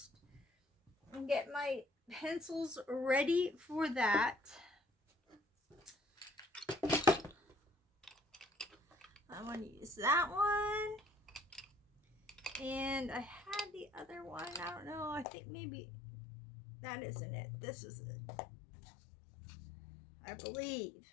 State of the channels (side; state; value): right; drops out; at 15.2 s